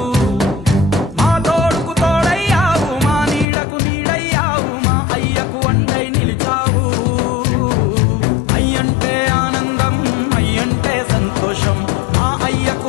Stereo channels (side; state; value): right; drops out; at 3.5 s